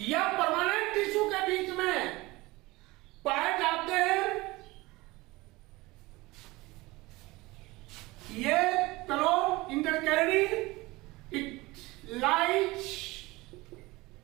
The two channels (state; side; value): quieter; left; 21.4 dB